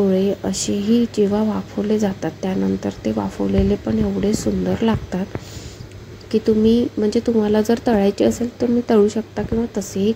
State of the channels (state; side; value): identical; both; correlation 1.00